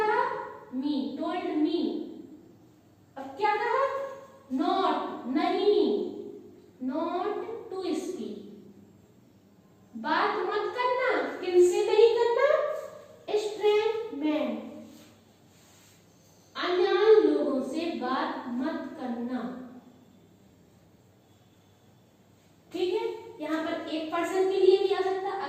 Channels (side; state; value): both; identical; correlation 1.00